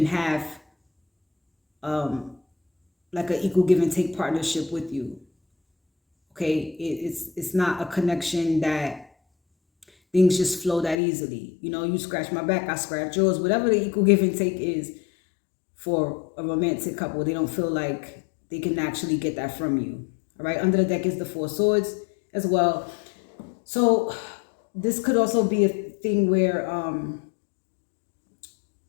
have like an equal give and take partnership with you. Okay, it's not a connection that things just flow that easily. You know, you scratch my back, I scratch yours. Whatever the equal give and take is for a romantic couple, they don't feel like they can actually get that from you. All right, under the deck is the Four Swords as well. So this could also be a thing where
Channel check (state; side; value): drops out; right; at 11.0 s